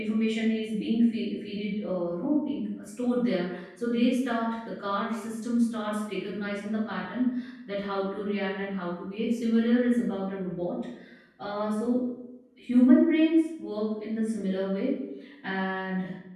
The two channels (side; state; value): both; identical; correlation 1.00